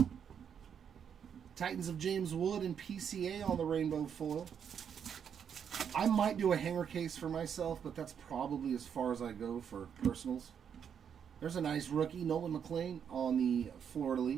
Titans of James Wood and PCA on the rainbow foil. I might do a hanger case for myself, but that's probably as far as I go for personals. There's a nice rookie, Nolan McLean on the Florida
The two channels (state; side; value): quieter; left; 7.8 dB